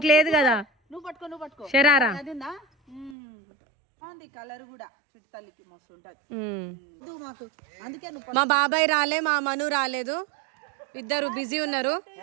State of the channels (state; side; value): drops out; left; at 3.2 s